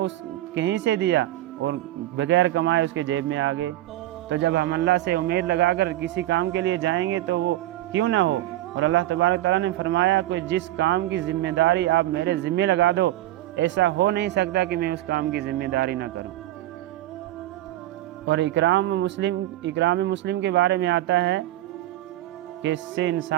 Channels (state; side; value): quieter; left; 14.9 dB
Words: کہیں سے دیا اور بغیر کمائے اس کے جیب میں آ گئے۔ تو جب ہم اللہ سے امید لگا کر کسی کام کے لیے جائیں گے تو وہ کیوں نہ ہو، اور اللہ تبارک تعالیٰ نے فرمایا کہ جس کام کی ذمہ داری آپ میرے ذمہ لگا دو، ایسا ہو نہیں سکتا کہ میں اس کام کی ذمہ داری نہ کروں۔ اور اکرام مسلم کے بارے میں آتا ہے کہ اس سے